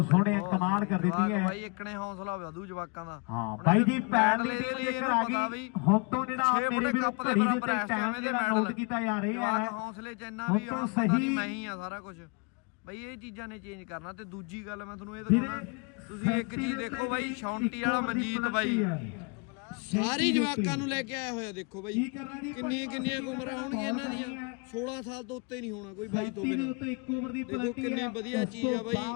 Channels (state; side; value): quieter; right; 33.0 dB